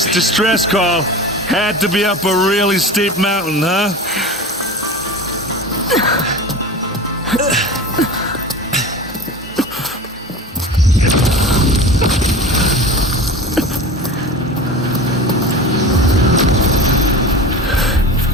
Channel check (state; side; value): normal; both; correlation 0.33